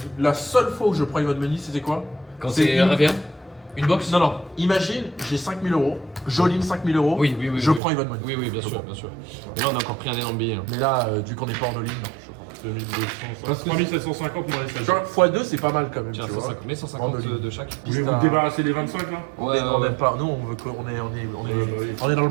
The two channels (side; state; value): left; drops out; at 7.8 s